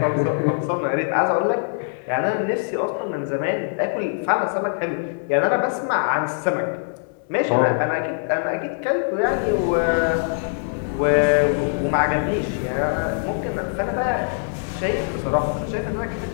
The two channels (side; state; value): right; silent; digital silence